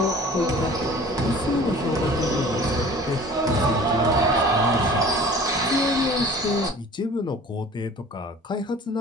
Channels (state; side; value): normal; both; correlation 0.46